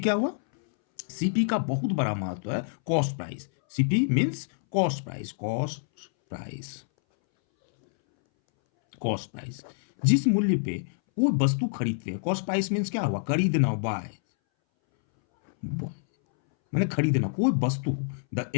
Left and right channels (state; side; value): silent; right; 60 dB below the other